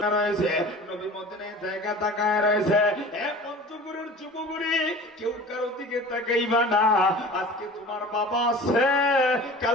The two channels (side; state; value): both; normal; correlation 0.40